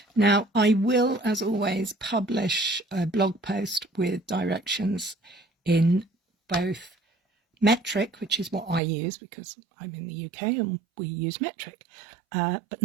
Now, I will, as always, publish a blog post with directions in both metric, which is what I use because I'm in the UK and we use metric, but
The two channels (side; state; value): left; drops out; at 8.8 s